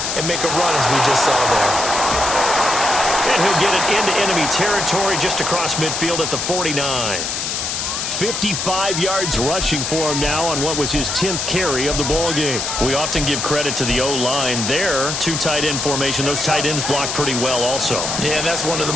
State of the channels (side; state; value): left; noise; hiss, 2 dB below the sound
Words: and make a run as we just saw there. And he'll get it into enemy territory just across midfield at the 49. 55 yards rushing for him now on what was his 10th carry of the ball game. We often give credit to the O-line there. 2 tight end formation. Those tight ends block pretty well also. Yeah, that's one of